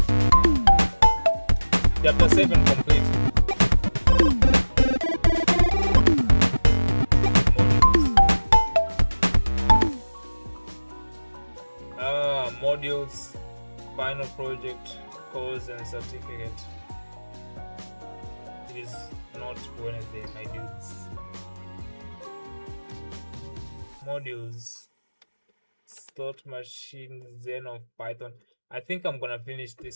Chapter 7 complete. Modules, final project, course and certificate. It is not Wednesday, my dudes. Modules, slot machine, Zen of Python. I think I'm gonna finish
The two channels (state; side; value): inverted; both; correlation -1.00